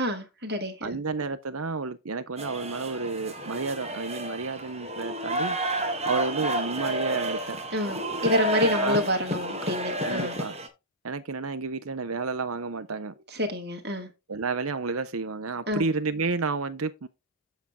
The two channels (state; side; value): normal; both; correlation -0.14